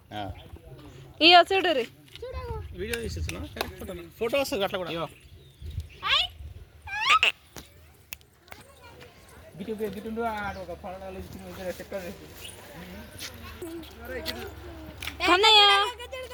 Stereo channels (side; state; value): both; identical; correlation 1.00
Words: ఇయో చూడు రీ వీడియో తీసేస్తున్నా ఫోటో వస్తుంది అట్లా కూడా గిట్టు ఒక పడాలు చెప్తారు